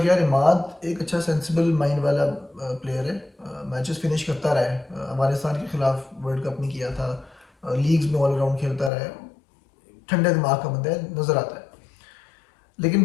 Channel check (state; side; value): drops out; right; at 8.9 s